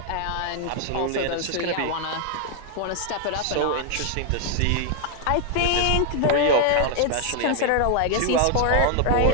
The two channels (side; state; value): both; different; correlation 0.00